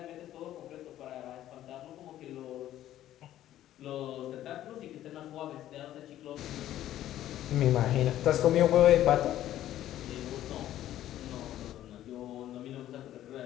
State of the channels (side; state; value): right; quieter; 12.8 dB